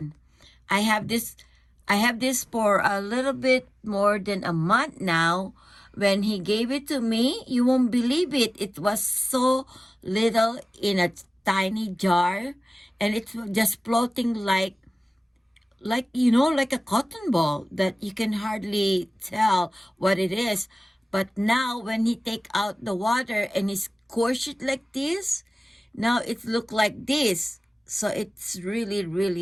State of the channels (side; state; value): both; normal; correlation 0.96